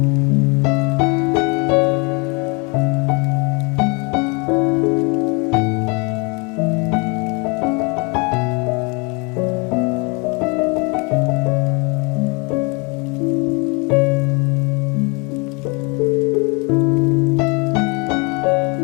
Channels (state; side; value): quieter; right; 31.3 dB